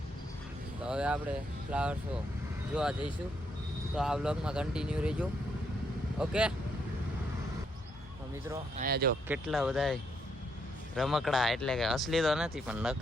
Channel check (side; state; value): both; normal; correlation 0.75